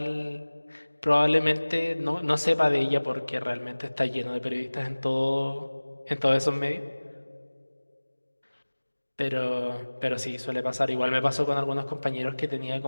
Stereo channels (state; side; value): inverted; both; correlation -1.00